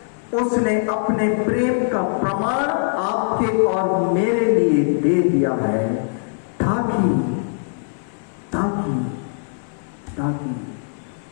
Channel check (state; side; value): silent; right; 65 dB below the other